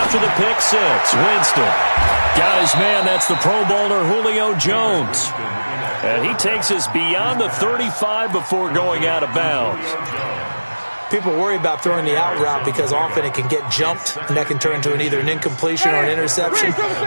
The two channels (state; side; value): inverted; both; correlation -1.00